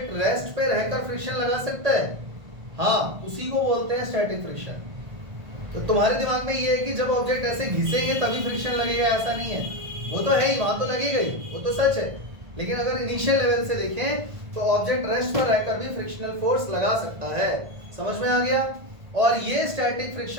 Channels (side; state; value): left; late; 1.5 ms